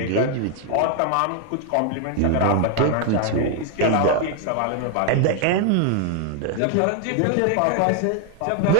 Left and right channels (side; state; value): both; different; correlation 0.00